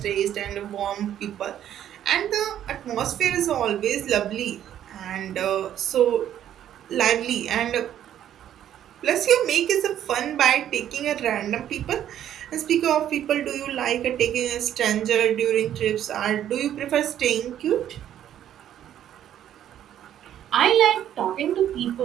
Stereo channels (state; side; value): quieter; left; 10.9 dB